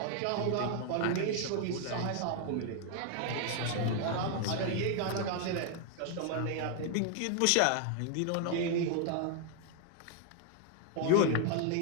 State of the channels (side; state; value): both; different; correlation 0.00